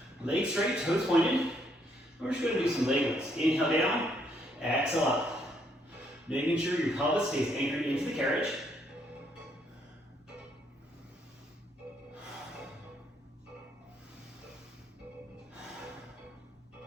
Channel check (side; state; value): both; normal; correlation 0.72